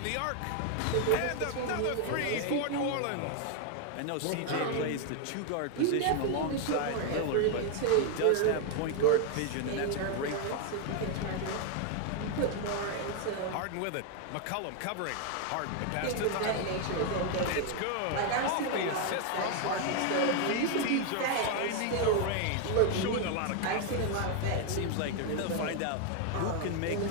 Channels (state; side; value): different; both; correlation 0.00